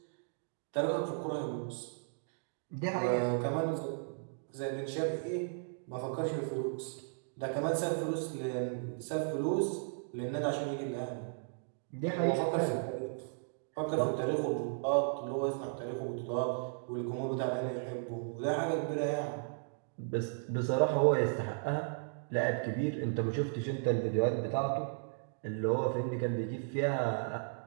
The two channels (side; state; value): left; silent; digital silence